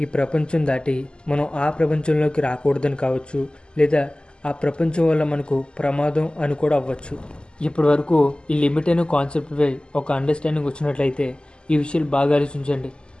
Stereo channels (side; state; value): right; late; 0.049 ms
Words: ఈ ప్రపంచం దాటి మనం ఆ ప్రపంచంలోకి రాకూడదని కావచ్చు, లేదా ఆ ప్రపంచం వల్ల మనకు ప్రమాదం అని కూడా అవ్వచ్చు. ఇప్పటి వరకు ఈ లిమిట్ అనే కాన్సెప్ట్పై ఒక అండర్స్టాండింగ్ వచ్చినట్లయితే ఈ విషయాలు బాగా ఆలోచించండి.